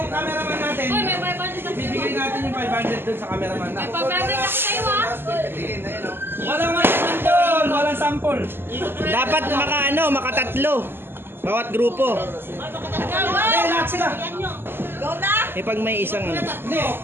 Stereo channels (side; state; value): left; late; 0.10 ms